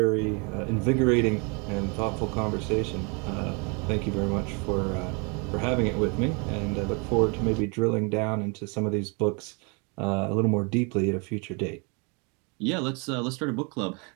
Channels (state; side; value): quieter; left; 33.0 dB